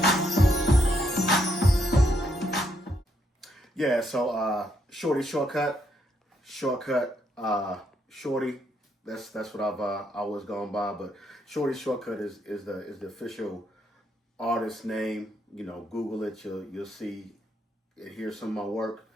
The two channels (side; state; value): both; normal; correlation 0.75